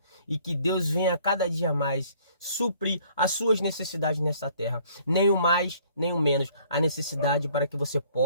E que Deus venha cada dia mais suprir as suas necessidades nessa terra. Nem o mais, nem o menos. A necessidade para que você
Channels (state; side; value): inverted; both; correlation -0.58